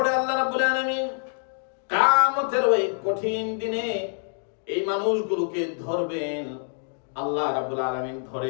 আল্লাহ রাব্বুল আলামিন কিয়ামতের ওই কঠিন দিনে এই মানুষগুলোকে ধরবেন। আল্লাহ রাব্বুল আলামিন ধরে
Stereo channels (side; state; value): right; silent; digital silence